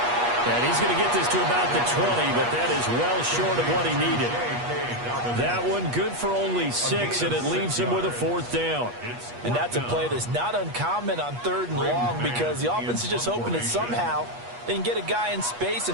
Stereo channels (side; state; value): left; late; 8.3 ms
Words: And he's going to get this to about the 20, but that is well short of what he needed. That one good for only 6, and it leaves him with a fourth down. And that's a play that's not uncommon on third and long because the offense is just hoping that somehow they can get a guy in space